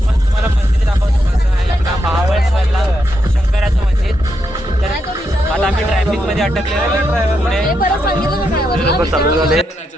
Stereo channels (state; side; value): normal; both; correlation 0.82